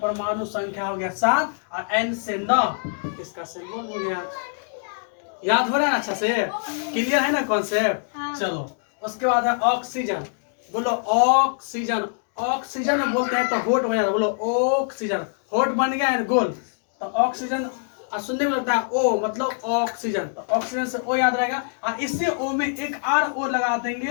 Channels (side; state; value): right; silent; digital silence